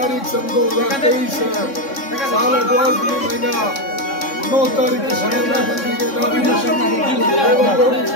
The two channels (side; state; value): right; late; 3.6 ms